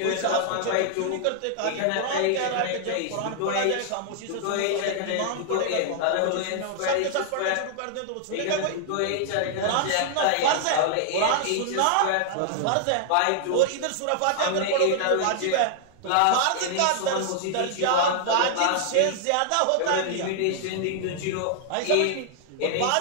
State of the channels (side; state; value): both; different; correlation -0.01